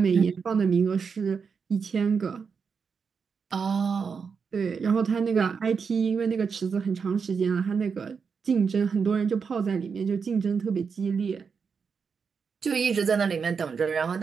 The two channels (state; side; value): quieter; left; 5.8 dB